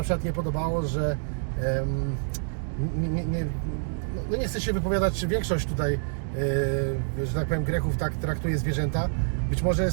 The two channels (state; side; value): silent; left; digital silence